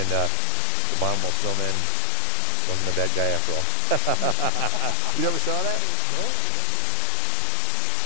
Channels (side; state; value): both; different; correlation 0.00